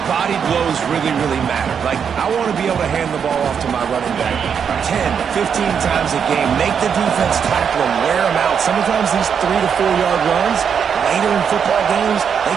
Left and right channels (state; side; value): quieter; left; 7.2 dB